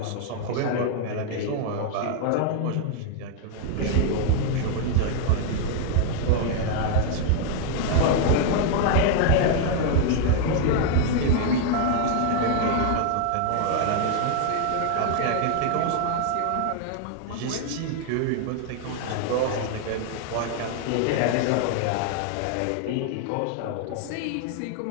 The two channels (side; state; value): both; different; correlation 0.00